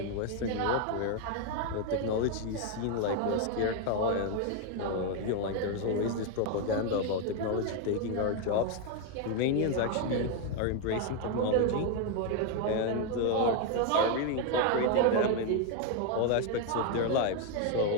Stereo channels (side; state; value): both; different; correlation 0.01